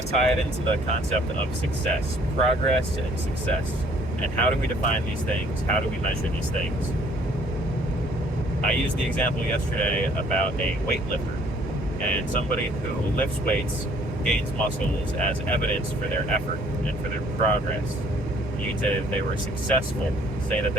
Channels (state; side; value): normal; both; correlation 0.60